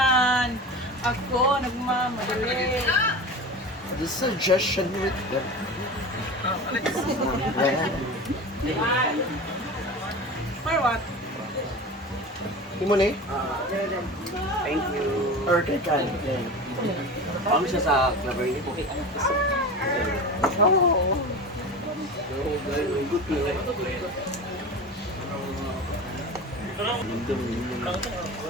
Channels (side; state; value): both; normal; correlation 0.31